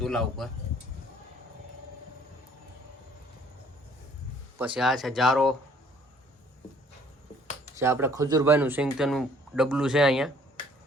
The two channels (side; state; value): both; normal; correlation 0.58